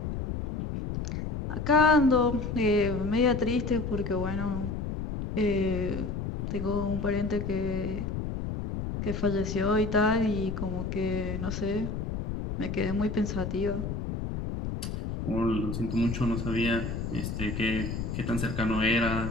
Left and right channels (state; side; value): noise; left; rumble, 4 dB below the sound